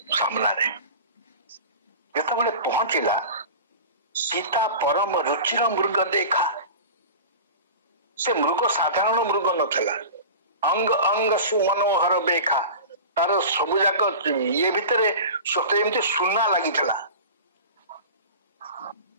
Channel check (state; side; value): inverted; both; correlation -0.34